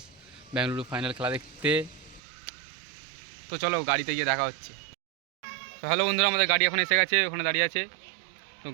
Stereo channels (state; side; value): drops out; left; at 2.2 s